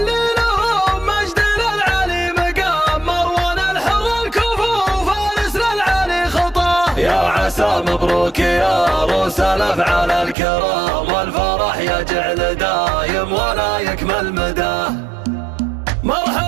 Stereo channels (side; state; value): left; drops out; at 10.4 s